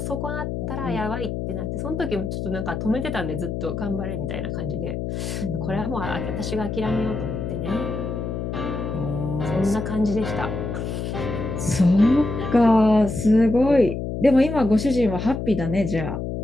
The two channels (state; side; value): noise; left; hum, 4 dB below the sound